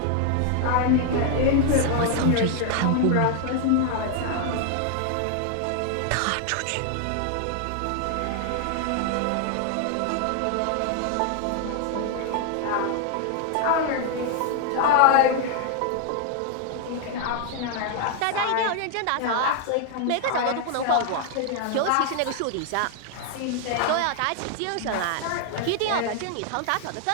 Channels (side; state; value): both; different; correlation 0.00